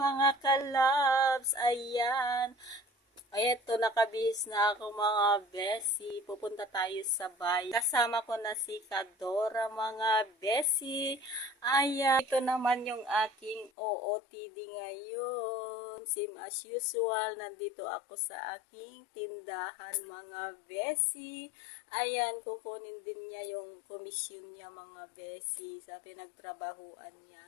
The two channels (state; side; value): drops out; right; at 13.7 s